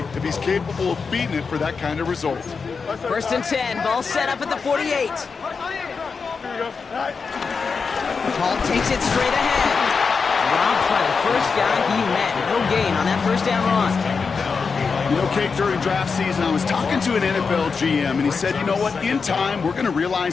if he's capable of beating it for that kind of result? First and 10. Ball set up at the 48. Hall takes it straight ahead. Robbed by the first guy he met. No gain on that first down run. You know, Kate, during draft season, I was talking to an NFL GM, and he said, you know what, in time, we're going to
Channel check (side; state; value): right; quieter; 5.2 dB